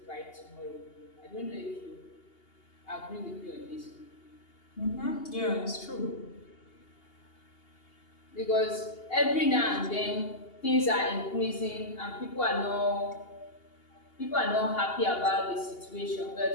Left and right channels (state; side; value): late; right; 2.8 ms